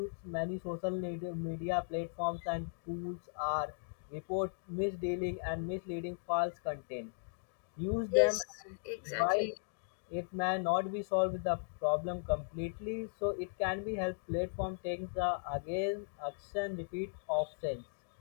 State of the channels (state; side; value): silent; right; digital silence